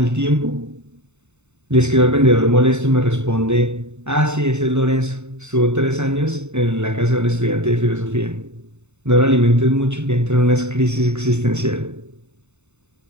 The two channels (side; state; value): left; late; 0.82 ms